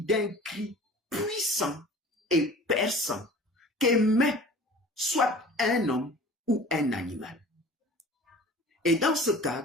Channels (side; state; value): both; normal; correlation 0.43